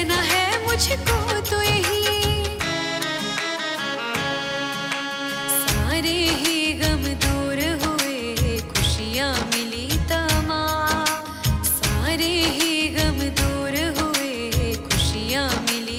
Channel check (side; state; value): both; identical; correlation 1.00